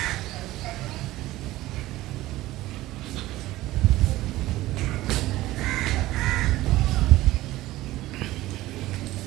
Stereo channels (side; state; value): left; quieter; 16.9 dB